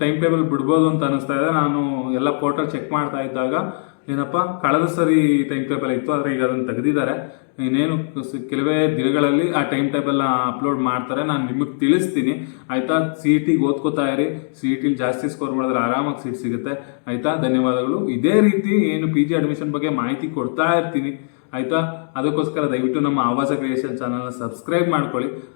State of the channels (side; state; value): right; silent; digital silence